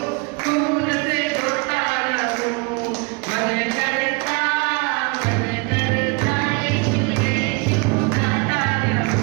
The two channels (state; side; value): quieter; left; 30.2 dB